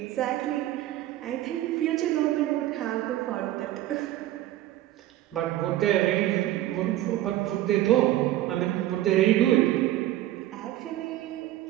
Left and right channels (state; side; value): quieter; left; 14.4 dB